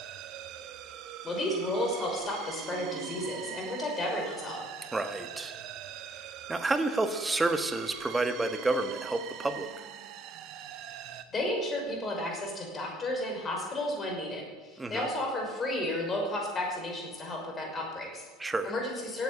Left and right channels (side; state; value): both; normal; correlation 0.60